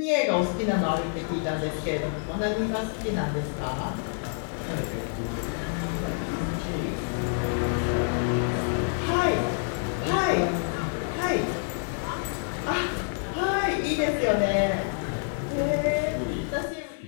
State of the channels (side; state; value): right; silent; 60 dB below the other